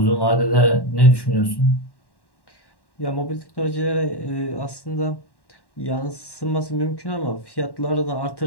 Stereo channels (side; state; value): right; late; 1.1 ms